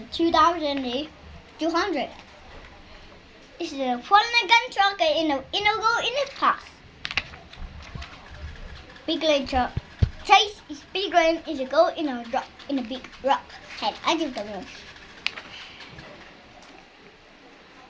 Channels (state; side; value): identical; both; correlation 1.00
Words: 2,200. It's a Mulligan truck in a go in a pass. Big leg truck. Chase is big leg is a go in a rock in a big rock head. I don't know.